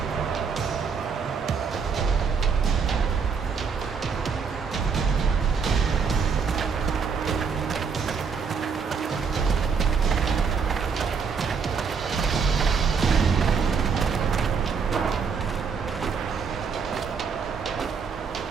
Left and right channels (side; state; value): left; quieter; 5.8 dB